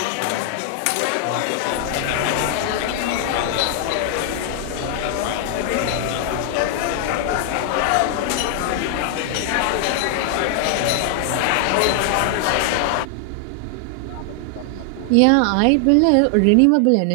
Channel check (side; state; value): both; different; correlation 0.00